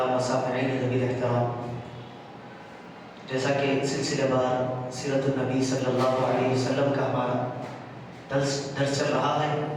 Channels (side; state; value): both; identical; correlation 1.00